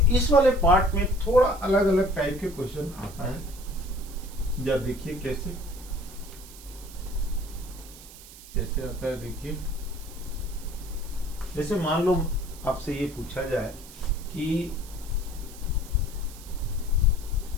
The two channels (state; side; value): noise; right; hiss, 18 dB below the sound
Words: इस वाले पार्ट में थोड़ा अलग अलग टाइप के क्वेश्चन आता है, जब देखिए कैसे आता है। देखिए जैसे मान लो आपसे ये पूछा जाए कि